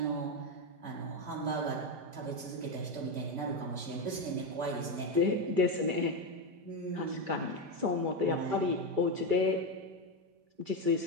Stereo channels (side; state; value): left; late; 5.1 ms